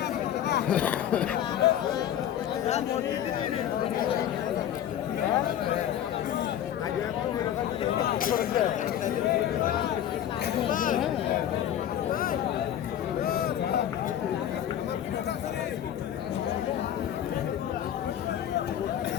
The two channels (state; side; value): quieter; right; 10.7 dB